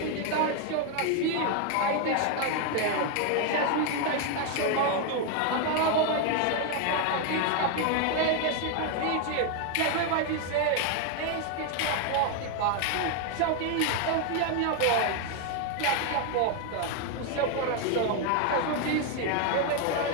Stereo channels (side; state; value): both; different; correlation 0.01